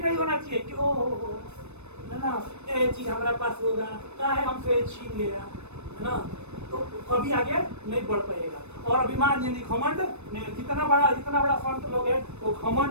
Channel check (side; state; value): left; late; 0.81 ms